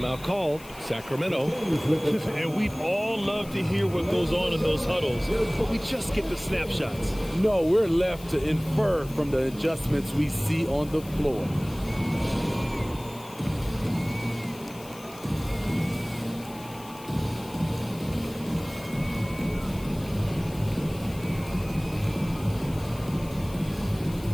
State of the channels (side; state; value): left; noise; hiss, 19 dB below the sound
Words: called. Sacramento. And we'd all love to hear what goes on in those huddles, but we just get the snapshots. No, we're left to infer from the adjustments we see on the floor.